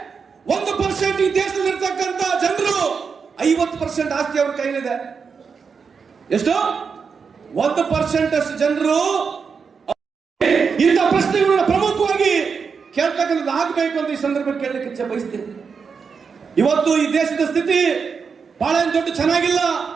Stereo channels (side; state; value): left; quieter; 5.7 dB